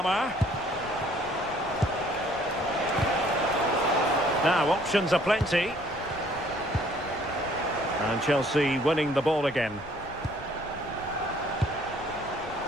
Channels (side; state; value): left; noise; rumble, 19 dB below the sound